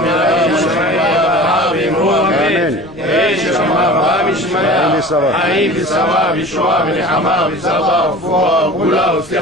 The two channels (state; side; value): noise; left; rumble, 23 dB below the sound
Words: מראים שמעיה ברעה ואמרו אמן. יש שמע רבה משמעיה חיים ושרה וישועה ונחמה ושרבה ופועה וגאולה